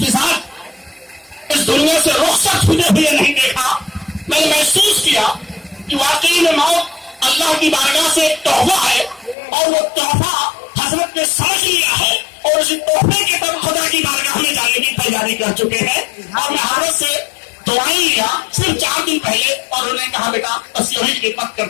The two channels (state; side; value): drops out; right; at 9.3 s